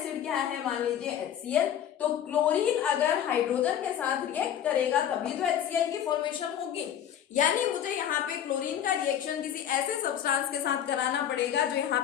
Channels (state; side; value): quieter; right; 9.9 dB